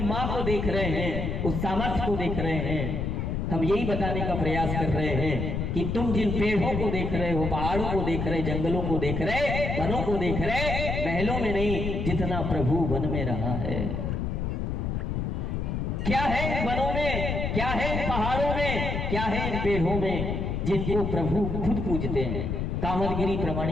मां को देख रहे हैं, उस सामर्थ्य को देख रहे हैं। हम यही बताने का प्रयास कर रहे हैं कि तुम जिन पेड़ों को देख रहे हो, पहाड़ों को देख रहे, जंगलों को देख रहे, वनों को देख रहे, महलों में नहीं, जितना प्रभु वन में रहा है। क्या है इन वनों में, क्या है इन पहाड़ों में, क्या है इन पेड़ों में, जिनको प्रभु खुद पूजते हैं। कामदगिरी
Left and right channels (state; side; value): noise; left; rumble, 2 dB below the sound